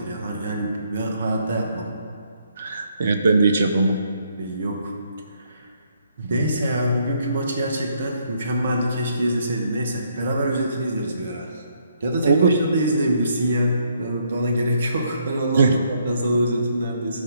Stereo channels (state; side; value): inverted; both; correlation -0.71